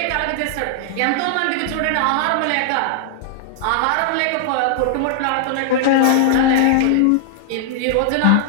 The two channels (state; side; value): different; both; correlation -0.01